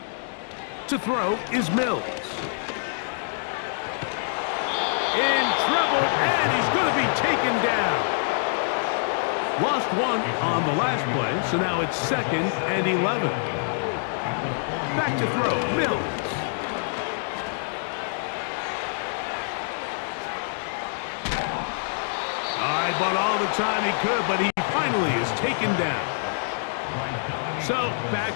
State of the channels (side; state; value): right; silent; digital silence